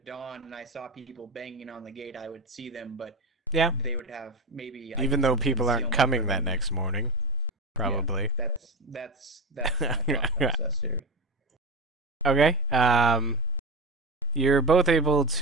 dawn and I saw people banging on the gate, I would see them, but Yeah, they would have maybe... even though people aren't concealment coming from that me. next morning, probably. That's my thought process here. Okay. You're both able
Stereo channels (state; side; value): quieter; left; 3.6 dB